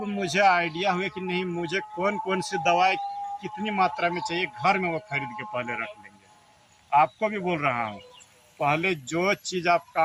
मुझे आइडिया हुआ कि नहीं, मुझे कौन कौन सी दवाई कितनी मात्रा में चाहिए, घर में वो खरीद के पहले रख लेंगे। आपको भी बोल रहा हूँ, पहले जो चीज़ आप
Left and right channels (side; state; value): both; identical; correlation 1.00